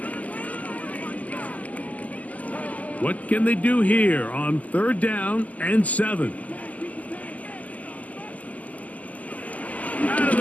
What can they do here on 3rd down and 7? Out of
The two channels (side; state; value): right; late; 0.075 ms